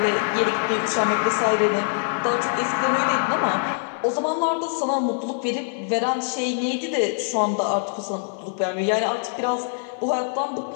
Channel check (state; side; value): silent; right; 63 dB below the other